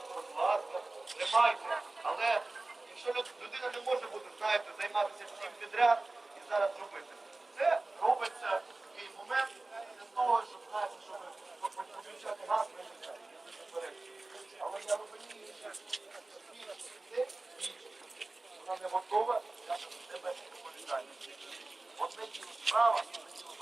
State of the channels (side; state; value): left; quieter; 3.1 dB